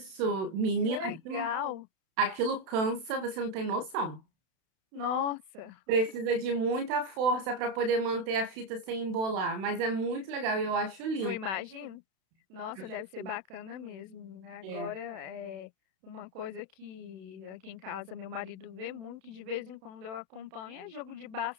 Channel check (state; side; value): late; left; 32 ms